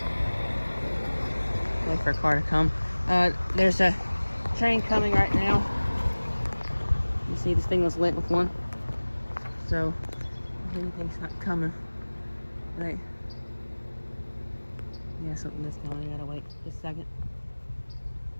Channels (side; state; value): both; inverted; correlation -1.00